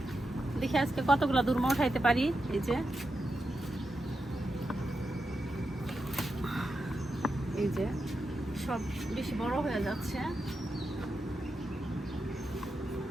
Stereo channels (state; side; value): normal; both; correlation 0.88